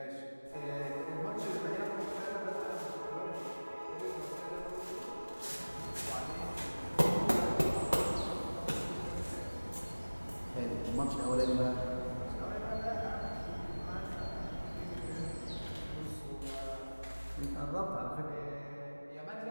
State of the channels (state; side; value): inverted; both; correlation -1.00